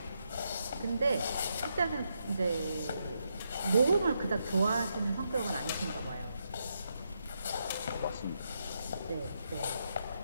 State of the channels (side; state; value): both; inverted; correlation -0.81